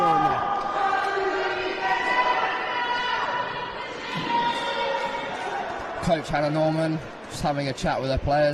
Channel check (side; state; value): both; identical; correlation 1.00